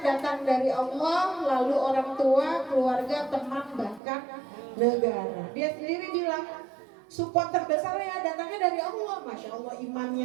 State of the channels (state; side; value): drops out; left; at 4.0 s